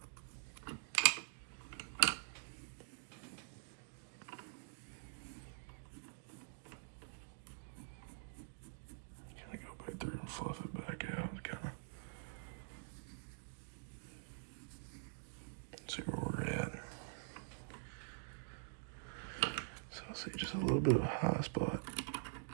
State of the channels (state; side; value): silent; left; digital silence